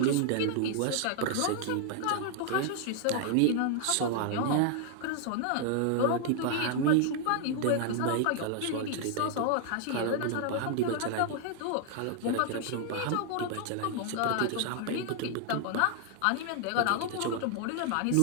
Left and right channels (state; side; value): different; both; correlation 0.00